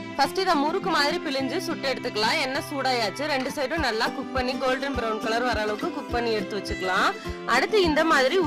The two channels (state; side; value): identical; both; correlation 1.00